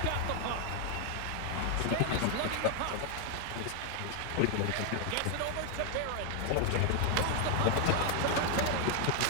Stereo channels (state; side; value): different; both; correlation 0.00